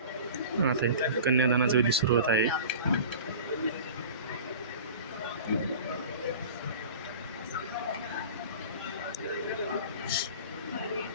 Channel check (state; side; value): inverted; both; correlation -0.39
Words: आता इथे कन्यादानाचा विधी सुरू होत आहे.